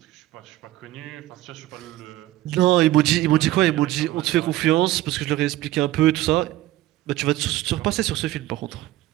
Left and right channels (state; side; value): quieter; left; 16.0 dB